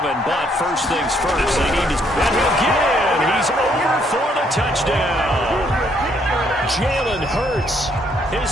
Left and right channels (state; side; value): normal; both; correlation 0.69